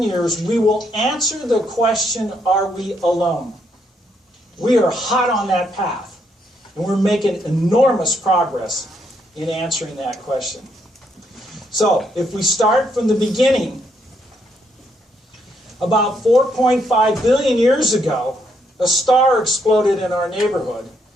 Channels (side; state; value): both; normal; correlation 0.74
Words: years, we will answer the question, are we alone? We are hot on that path, and we're making enormous progress in answering that question. So, if we start from the beginning, about 4.5 billion years ago, a star exploded in our neighborhood,